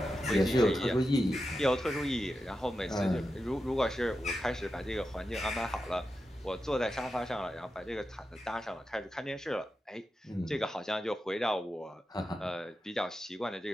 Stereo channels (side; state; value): both; normal; correlation 0.90